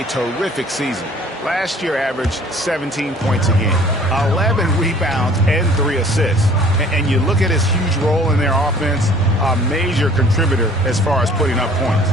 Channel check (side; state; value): both; normal; correlation 0.52